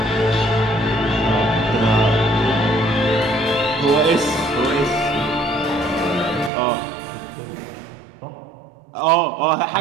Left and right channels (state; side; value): drops out; left; at 6.5 s